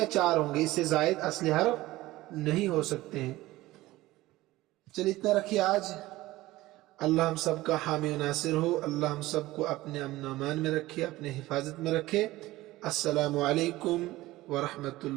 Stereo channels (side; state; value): left; quieter; 17.8 dB